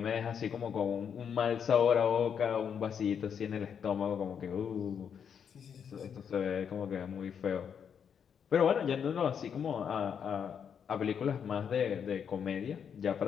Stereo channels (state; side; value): quieter; right; 7.5 dB